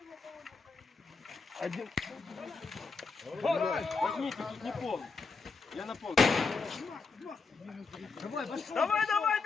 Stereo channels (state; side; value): quieter; right; 4.5 dB